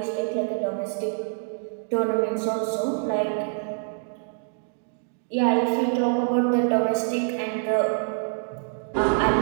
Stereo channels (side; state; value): left; silent; 61 dB below the other